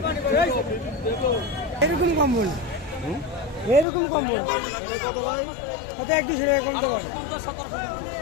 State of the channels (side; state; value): right; drops out; at 3.9 s